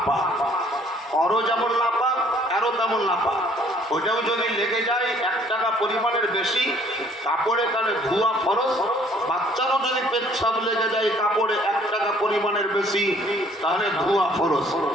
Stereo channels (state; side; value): normal; both; correlation 0.59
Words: ওরও যেমন নাপাক, এরও তেমন নাপাক। ওইটাও যদি লেগে যায় 1 টাকা পরিমাণের বেশি কাপড়ে, তাহলে ধোয়া ফরজ। বাচ্চারও যদি পেচ্ছাপ লেগে যায় কাপড়ে 1 টাকা পরিমাণের বেশি, তাহলে ধোয়া ফরজ।